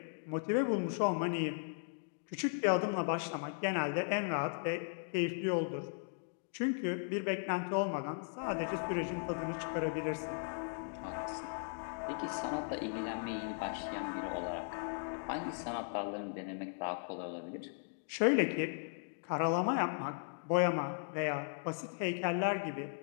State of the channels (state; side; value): silent; right; digital silence